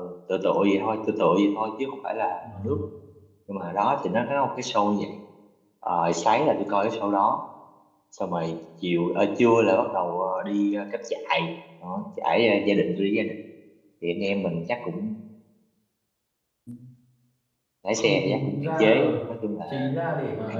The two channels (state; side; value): identical; both; correlation 1.00